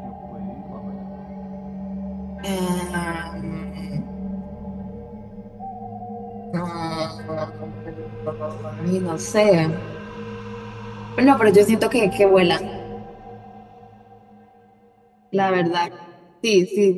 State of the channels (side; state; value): both; identical; correlation 1.00